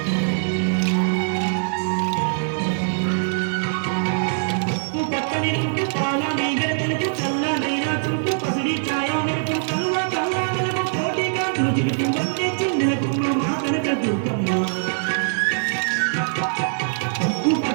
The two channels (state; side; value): silent; left; 55 dB below the other